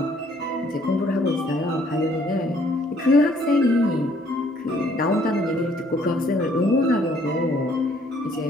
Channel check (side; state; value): both; normal; correlation 0.63